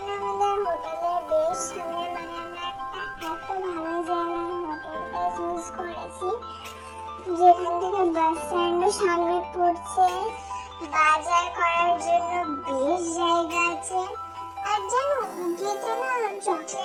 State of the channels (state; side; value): identical; both; correlation 1.00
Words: আমাদের হোটেলের বেশ সামনে, মানে আমরা একটা এত ভালো জায়গায় হোটেলটা চুজ করেছি যেখান থেকে বাস স্ট্যান্ডও সামনে পড়ছে, বাজার করার জন্য বেশ জায়গা আছে। আর জানো উটিতে না